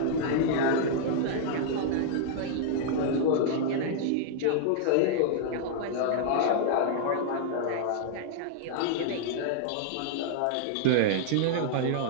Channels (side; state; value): both; different; correlation -0.01